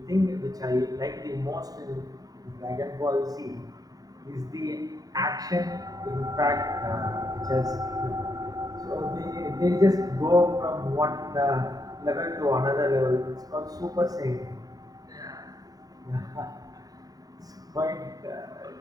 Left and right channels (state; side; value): late; left; 0.18 ms